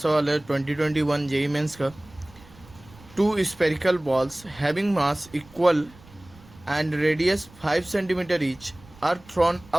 है 2021 जेईई मेंस का। 2 spherical balls having mass equal and radius 5 centimeter each are thrown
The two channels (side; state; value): right; noise; rumble, 24 dB below the sound